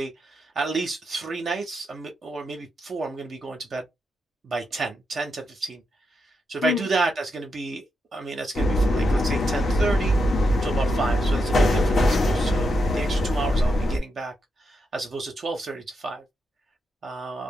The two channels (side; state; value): both; normal; correlation 0.84